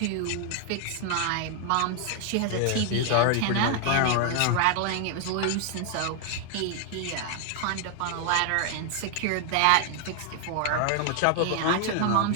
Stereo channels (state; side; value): different; both; correlation 0.00